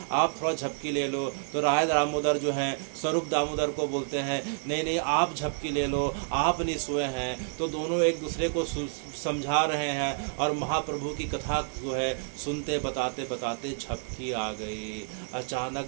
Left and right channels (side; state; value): left; silent; digital silence